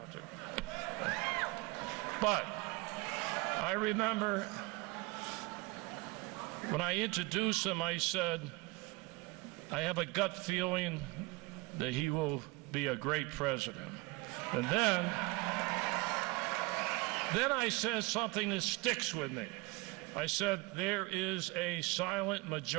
But I remember when I introduced him, I said, I have a gut feeling that he will be a great president. And then I said something that sticks with me. I said, there is a silent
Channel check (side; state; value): left; quieter; 24.0 dB